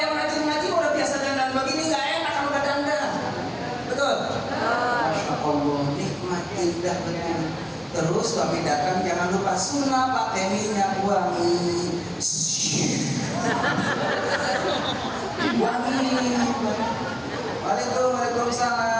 rajin ngaji udah biasa dandan begini, nggak enak kalau udah dandan. Betul? Masya Allah, nikmat indah betul. Terus suami datang jangan lupa sunnah pakai minyak wangi. Wangi.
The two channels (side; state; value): both; identical; correlation 1.00